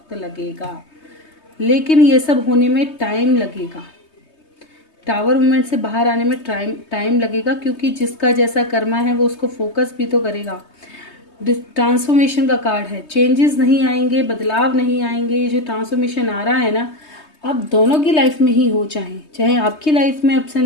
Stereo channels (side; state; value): right; late; 3.2 ms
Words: लगेगा लेकिन ये सब होने में टाइम लगेगा। टावर मूवमेंट से बाहर आने में टाइम लगेगा क्योंकि जिसका जैसा कर्मा है वो उसको फोकस भी तो करेगा। ट्रांसफॉर्मेशन का कार्ड है, चेंजेस नहीं आएंगे, बदलाव नहीं आएंगे। ये जो ट्रांसफॉर्मेशन आ रहा है ना, आप दोनों की लाइफ में ही हो, चाहे चाहे आपकी लाइफ में अप्स